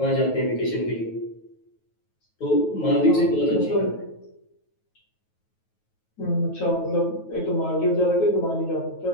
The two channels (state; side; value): late; right; 9.3 ms